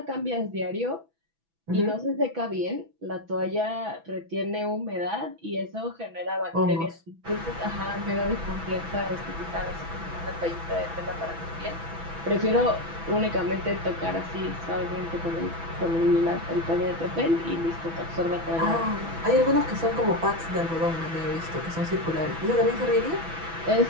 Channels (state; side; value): late; left; 6.1 ms